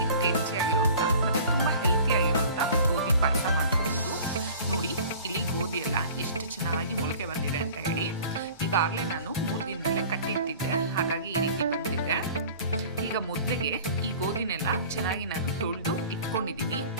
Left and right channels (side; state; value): both; inverted; correlation -0.44